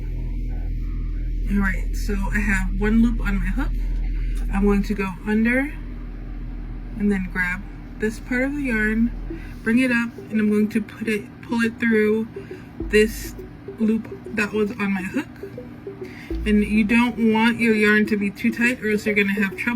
All right, so I have 1 loop on my hook. I'm going to go under and then grab this part of the yarn, bring it up, and I'm going to pull it through this loop that was on my hook. And you don't want your yarn to be too tight, or else you're gonna have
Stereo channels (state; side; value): identical; both; correlation 1.00